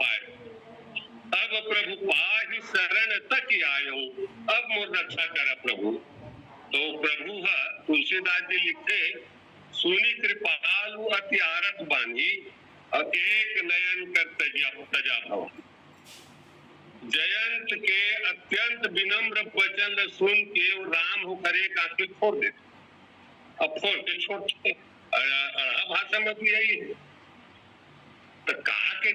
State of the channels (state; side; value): identical; both; correlation 1.00